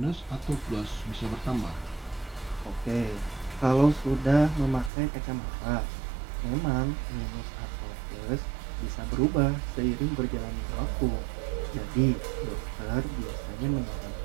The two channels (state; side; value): drops out; left; at 4.9 s